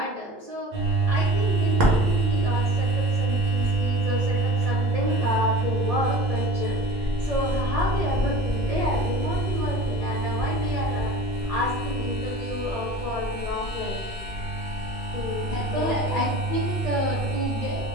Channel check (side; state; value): both; normal; correlation 0.41